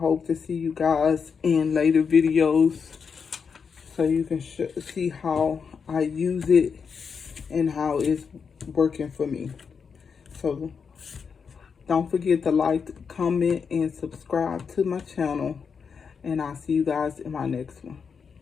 to see you guys in later videos so you can see how I use it and how it's working for me. So don't forget to like, comment, and subscribe to my channel. And I'll see you guys in my next one.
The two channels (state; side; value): quieter; right; 6.0 dB